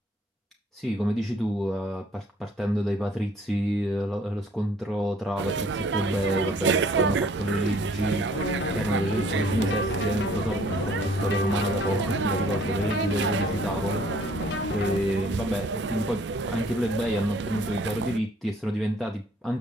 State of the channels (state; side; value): normal; both; correlation 0.58